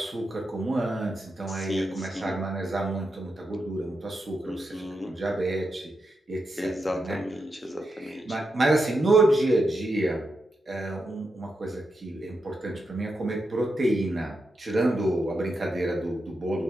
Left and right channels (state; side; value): normal; both; correlation 0.86